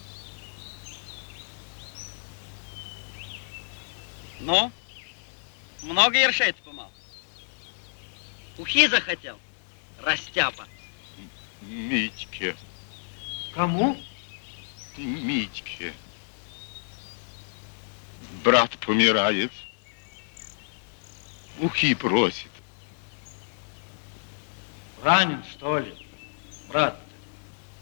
Ну? Много ершей ты помал? Ухи захотел? Растяпа. Митьке, Кому? Митьке. Брат помирает. Ухи просит. Ранен, что ли, брат?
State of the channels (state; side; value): silent; right; 58 dB below the other